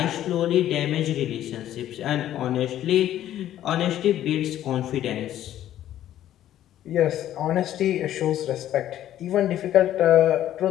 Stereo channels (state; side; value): quieter; right; 12.2 dB